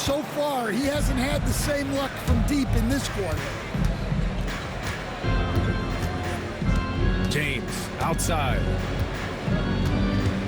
far, he hasn't had the same luck from deep in this quarter. James outside.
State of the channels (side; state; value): both; identical; correlation 1.00